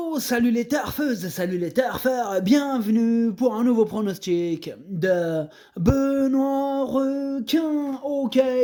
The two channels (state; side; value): identical; both; correlation 1.00